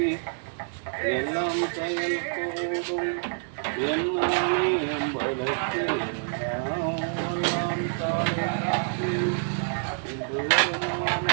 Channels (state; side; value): silent; left; digital silence